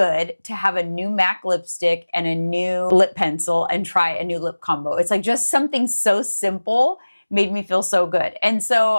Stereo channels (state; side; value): inverted; both; correlation -1.00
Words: to have a new MAC lipstick and a new lip pencil and try a new lip combo. It's like just something so simple made me feel so good. And so